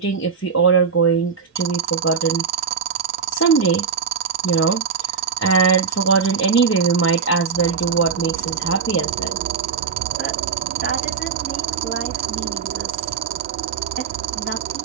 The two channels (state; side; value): quieter; left; 6.0 dB